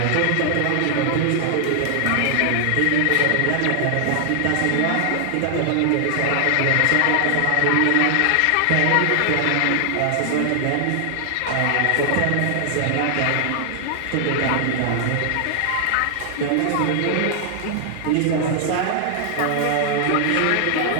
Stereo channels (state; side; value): different; both; correlation 0.00